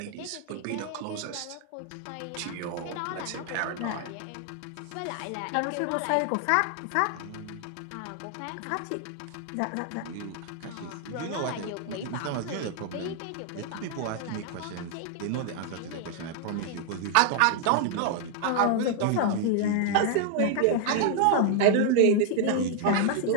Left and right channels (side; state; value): both; different; correlation 0.00